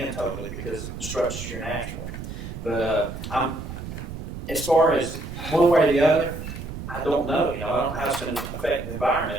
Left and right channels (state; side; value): noise; right; rumble, 9 dB below the sound